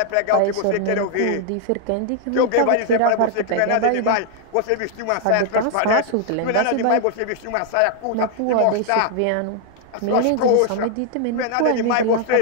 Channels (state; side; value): different; both; correlation 0.00